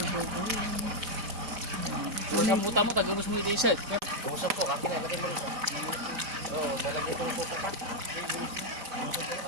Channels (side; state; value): left; late; 5.0 ms